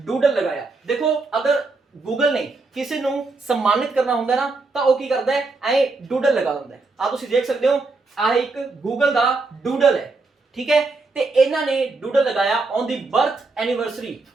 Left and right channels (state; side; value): quieter; left; 3.6 dB